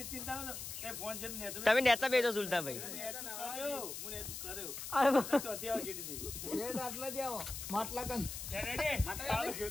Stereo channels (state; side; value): noise; left; hiss, 7 dB below the sound